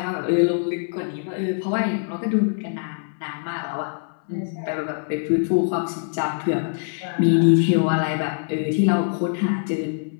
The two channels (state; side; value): silent; right; 63 dB below the other